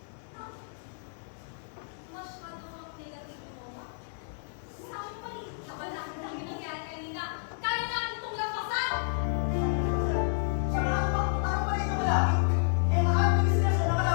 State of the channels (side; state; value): right; silent; digital silence